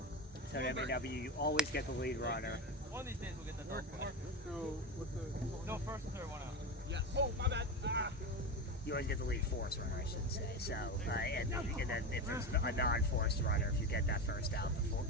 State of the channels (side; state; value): both; normal; correlation 0.20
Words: So at MAW, you always get the lead runner. One of these days we'll get the double play. So, with the... No, first and third, one out. Yes. Oh, my bad. Ah. You always get the lead force runner, I should say. So, and then if there's a non-forced runner, if you get that first out,